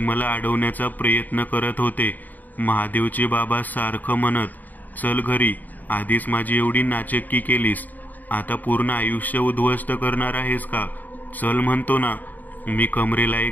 अडवण्याचा प्रयत्न करत होते. महादेवचे बाबा सारखं म्हणत, चल घरी, आधीच माझी एवढी नाचक्की केलीस, आता पूर्ण आयुष्य उद्ध्वस्त करणार आहेस का? चल म्हणतो ना. मी कमरेला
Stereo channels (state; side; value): late; right; 0.084 ms